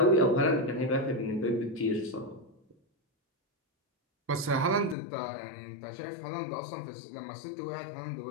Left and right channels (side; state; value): right; drops out; at 5.0 s